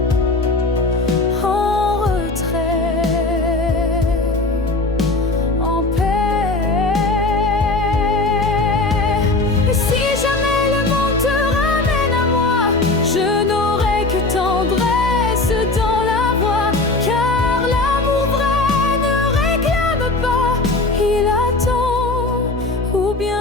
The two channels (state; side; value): quieter; right; 3.2 dB